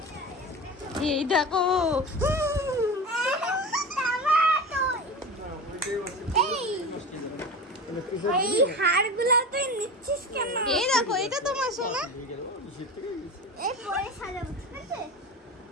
এই দেখো, এই হাড়গুলো তুই নিচ্ছিস কেন? এই দেখো, এটা তোমার সোনা। এই পরে সাজাবো, ঠিক আছে?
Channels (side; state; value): both; normal; correlation 0.29